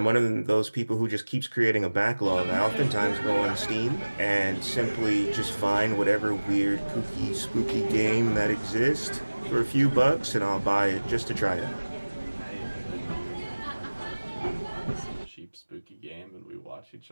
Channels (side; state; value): both; inverted; correlation -1.00